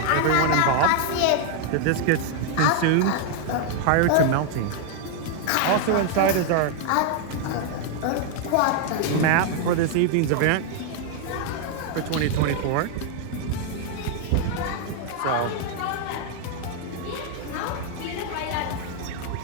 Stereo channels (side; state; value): both; different; correlation 0.00